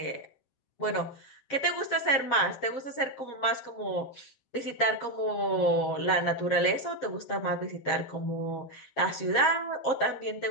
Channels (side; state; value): right; late; 7.5 ms